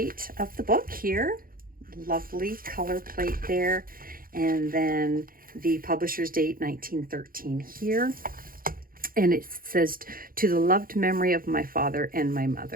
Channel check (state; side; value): late; left; 0.42 ms